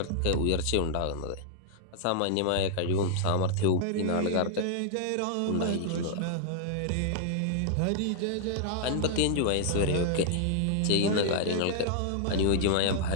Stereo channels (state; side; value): different; both; correlation -0.01